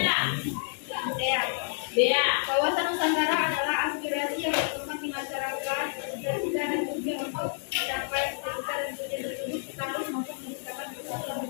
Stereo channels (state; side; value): silent; right; digital silence